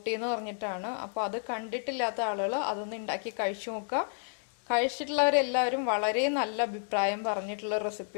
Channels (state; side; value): silent; right; digital silence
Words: എന്ന് പറഞ്ഞിട്ടാണ്. അപ്പൊ അത് കണ്ടിട്ടില്ലാത്ത ആളുകൾ അതൊന്ന് ഉണ്ടാക്കി കഴിച്ചു നോക്കുക. കഴിച്ചിട്ടുള്ളവരെല്ലാവരും വളരെ നല്ല അഭിപ്രായം പറഞ്ഞിട്ടുള്ള